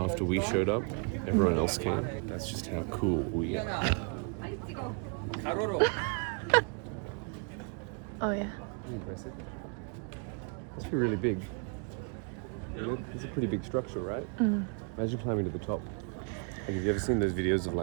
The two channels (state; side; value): quieter; left; 38.5 dB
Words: we showed up, everyone else came? That's just how cool we are. Oh, yeah. Impressive. Must be really big. It's a pretty big structure, right? Imagine climbing to the top. Like, have you ever seen those videos of